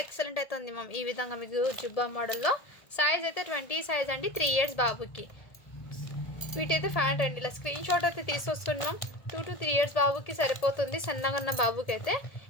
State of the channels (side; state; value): right; late; 1.8 ms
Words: ఎక్సలెంట్ అయితే ఉంది మ్యామ్. ఈ విధంగా మీకు జుబ్బా మోడల్లో సైజ్ అయితే 20 సైజ్ అండి, 3 ఇయర్స్ బాబుకి. వీటైతే ఫ్యాంట్ అండి, ఇలా స్క్రీన్ షాట్ అయితే తీసుకొస్తున్నాం. 2 to 3 ఇయర్స్ బాబుకి సరిపోతుంది, సన్నగా ఉన్న బాబుకి అయితే.